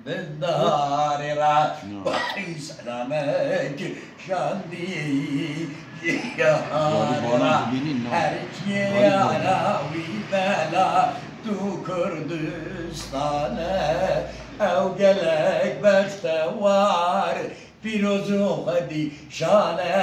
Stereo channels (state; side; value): identical; both; correlation 1.00